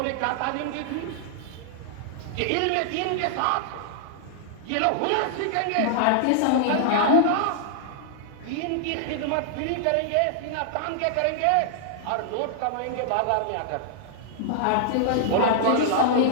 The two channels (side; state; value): both; different; correlation -0.01